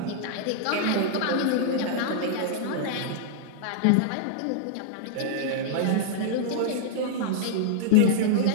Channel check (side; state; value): both; different; correlation -0.01